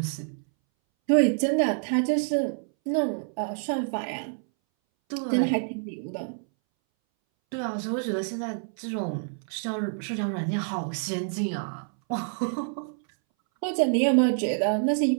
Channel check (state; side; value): silent; left; 60 dB below the other